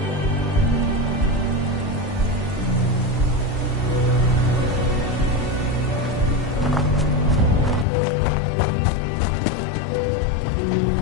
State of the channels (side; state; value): right; drops out; at 7.9 s